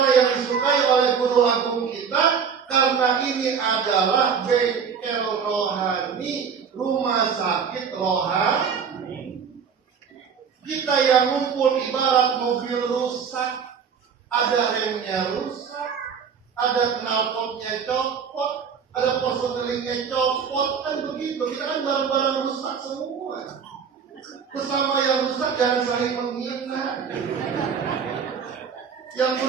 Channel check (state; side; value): quieter; left; 6.7 dB